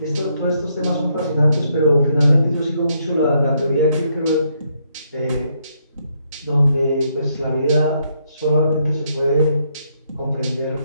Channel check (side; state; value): both; inverted; correlation -0.74